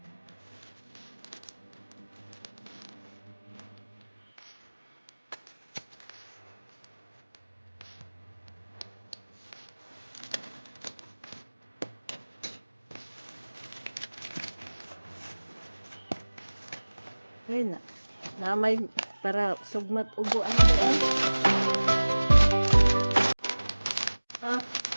Ayun na may para sugmat ubo ano doon.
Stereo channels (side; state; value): both; inverted; correlation -1.00